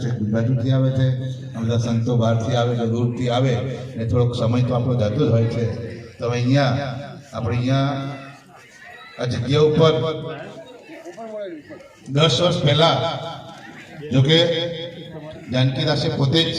છેક બાજુથી આવે છે, બધા સંતો બહારથી આવે છે, દૂરથી આવે, ને થોડોક સમય તો આપણો જતો જ હોય છે. તો હવે અહીંયા આપણે અહીંયા આ જગ્યા ઉપર 10 વર્ષ પહેલા જોકે જાનકીદાસે પોતે જ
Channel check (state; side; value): identical; both; correlation 1.00